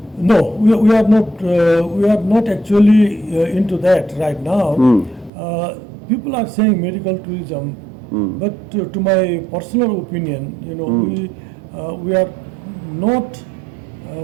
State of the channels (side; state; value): left; drops out; at 5.3 s